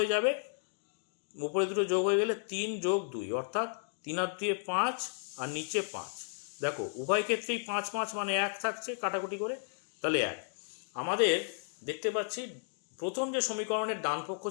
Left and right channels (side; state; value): right; silent; digital silence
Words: যাবে। উপরে দুটো যোগ হয়ে গেলে 3 + 2, অর্থাৎ 3 আর 2 5, আর নিচে 5। দেখো উভয় ক্ষেত্রেই 5 5 মানে 1 থাকছে, কাটাকুটি করে, তাহলে 1। আমাদের দেখতে পাচ্ছি প্রথম যে সমীকরণের ডান পক্ষ